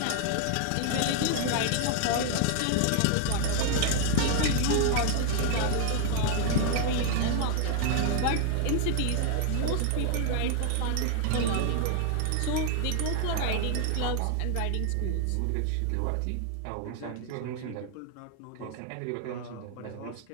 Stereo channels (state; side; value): different; both; correlation 0.00